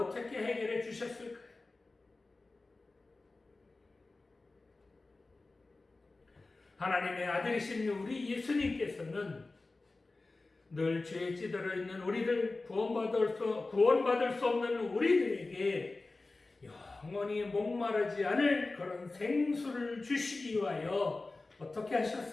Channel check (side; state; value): right; quieter; 3.4 dB